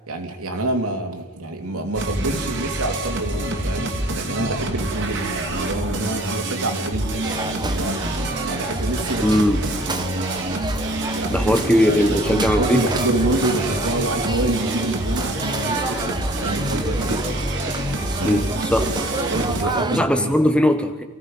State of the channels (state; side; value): normal; both; correlation 0.55